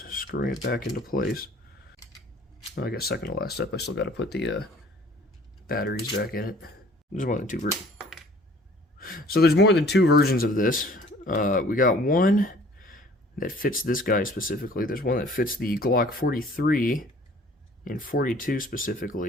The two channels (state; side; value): normal; both; correlation 0.53